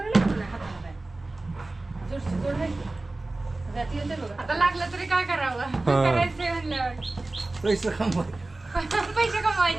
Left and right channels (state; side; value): quieter; left; 3.0 dB